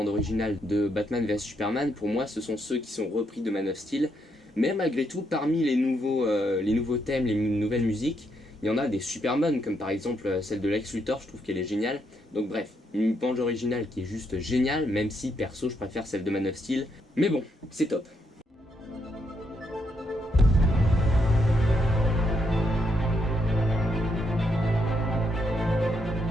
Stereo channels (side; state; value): both; normal; correlation 0.77